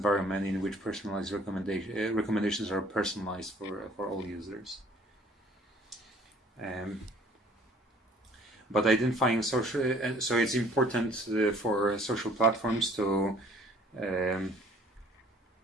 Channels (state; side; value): normal; both; correlation 0.55